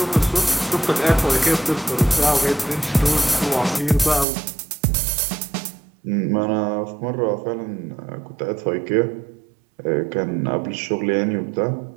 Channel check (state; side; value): drops out; left; at 4.2 s